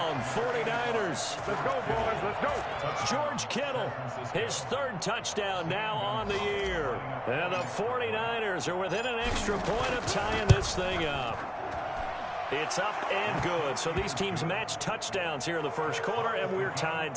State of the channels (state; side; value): identical; both; correlation 1.00